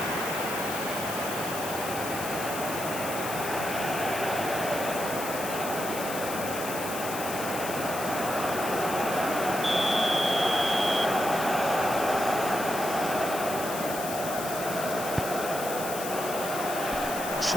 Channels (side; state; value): left; noise; hiss, 8 dB below the sound